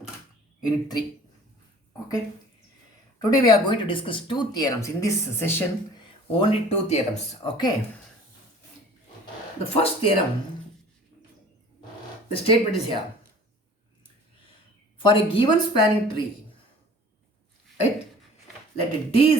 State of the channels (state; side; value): normal; both; correlation 0.48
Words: unit 3. Okay. Today we are going to discuss two theorems. In this session, only two theorems. Okay. The first theorem, the statement is here. For a given spanning tree, right, let D